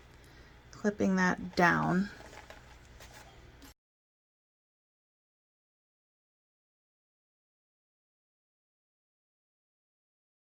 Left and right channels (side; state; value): both; identical; correlation 1.00